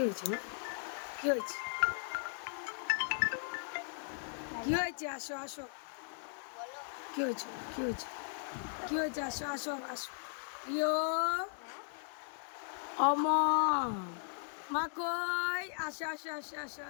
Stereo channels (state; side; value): silent; right; digital silence